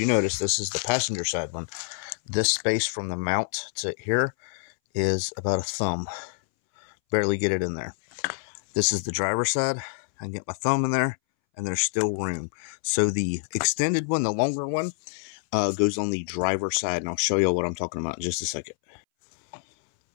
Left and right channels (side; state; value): right; silent; 60 dB below the other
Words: notice, this is the passenger side one. This space from the mount to here is about a thumb. Barely get it in there. This is the driver's side. I can get my thumb in there, and there's still room. So the extended one, the longer one, goes on the driver's side, and I'll show you what I'm talking about in just a second.